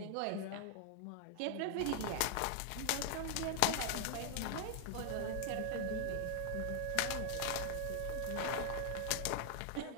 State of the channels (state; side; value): different; both; correlation 0.00